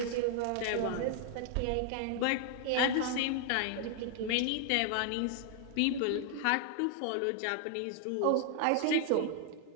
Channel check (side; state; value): both; different; correlation 0.00